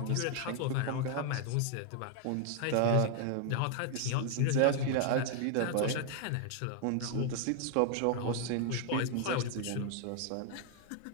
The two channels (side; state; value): both; different; correlation 0.00